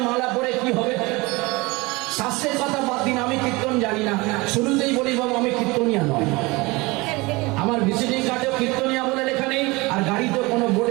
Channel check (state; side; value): quieter; left; 23.7 dB